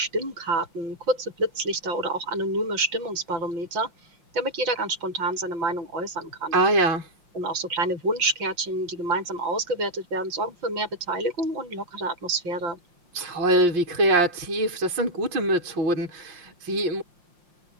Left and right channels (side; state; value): left; late; 5.7 ms